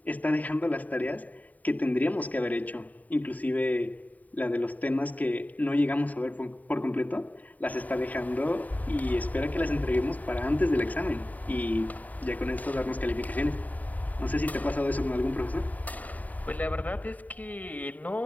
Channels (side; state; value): right; late; 0.075 ms